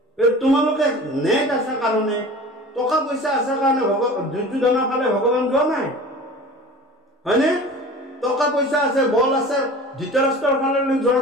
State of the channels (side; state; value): both; normal; correlation 0.39